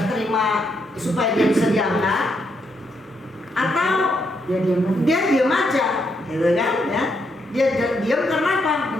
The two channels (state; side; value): normal; both; correlation 0.77